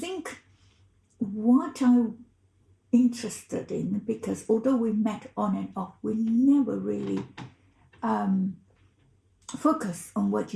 what I'm interested in, because although we met on and off, we never really focus on what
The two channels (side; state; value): both; identical; correlation 1.00